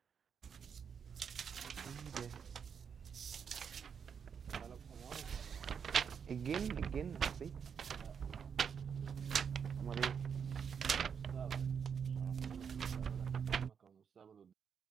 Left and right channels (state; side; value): quieter; left; 7.0 dB